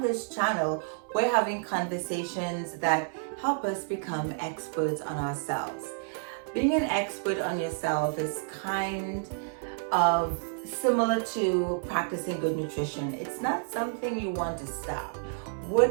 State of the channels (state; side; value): silent; left; 58 dB below the other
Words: this channel we're having conversations that help us become experts on ourselves. Being an expert on yourself is kind of similar to practicing good nutrition. It's not something you want to stop.